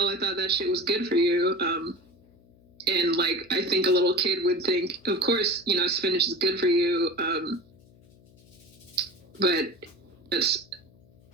I thought that shit was good for you. And, like, I think a little kid would think, of course, spinach is good for you. But that's,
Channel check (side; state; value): left; noise; hum, 28 dB below the sound